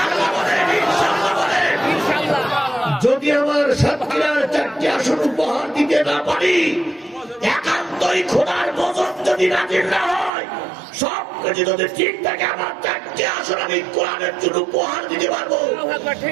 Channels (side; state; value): left; drops out; at 10.3 s